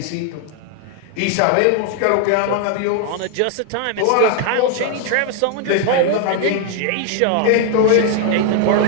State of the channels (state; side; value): different; both; correlation 0.00